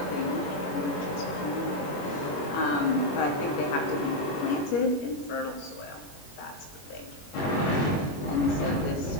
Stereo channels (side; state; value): right; late; 21 ms